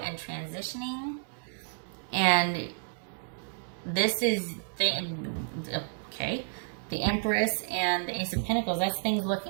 transitioning. And this is, okay, the Empress and the Ace of Pentacles. That's things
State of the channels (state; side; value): silent; left; 57 dB below the other